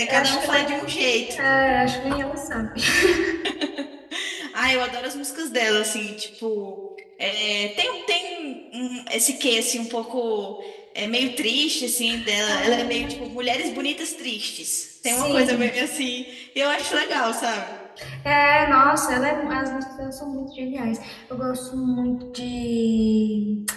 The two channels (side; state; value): both; identical; correlation 1.00